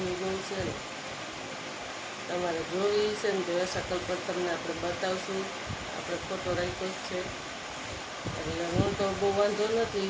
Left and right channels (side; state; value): both; identical; correlation 1.00